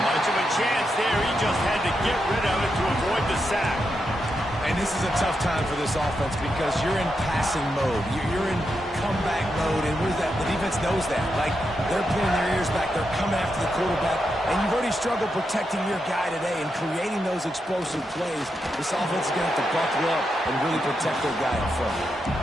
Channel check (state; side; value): normal; both; correlation 0.85